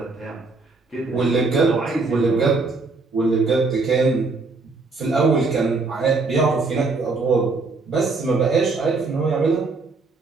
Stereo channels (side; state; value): left; quieter; 3.9 dB